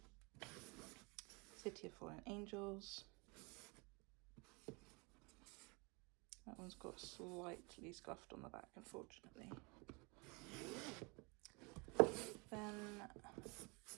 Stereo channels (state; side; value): quieter; left; 29.4 dB